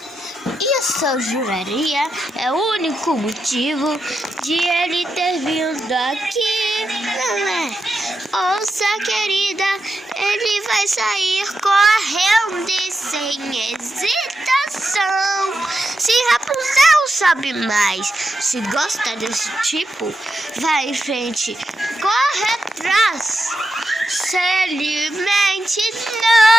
Isso eu juraria é o único motivo de ele ter vindo aqui, não é? Ouça, querida, ele vai sair correndo e sem hesitação. Se Rapunzel sabe mais, se gosta desse tipo, vai em frente, corre atrás. Se alimente,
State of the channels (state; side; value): normal; both; correlation 0.87